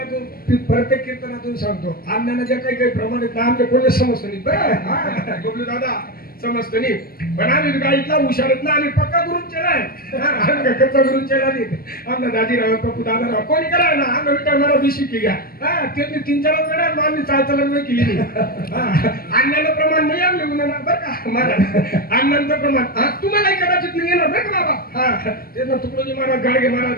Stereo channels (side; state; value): right; late; 0.43 ms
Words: समजून सांगतो अण्णांना ज्या काही काही प्रमाणात ना आमच्या कोणी समजतं नाही बरं हा, बबलू दादा समजतं नाही पण आम्ही गाडीतला हुशारत ना आम्ही पक्का करून केलाय आम्ही काय कच्चा करून केला नाही आमना दाजीराव पप्पू दादाराव कोणी करा ना आम्ही विटा मला बिशी की घ्या हा त्यांनी 3-4 वेळा आम्ही चालचलन नाही केली नाही अण्णांना प्रमाण नाही आमले गुन्हा बरं का मला अण्णांचं प्रमाण हा तुम्हालाही कदाचित नाही येणार बरं का बाबा हा त्यांना तुकडोजी महाराज गाडगे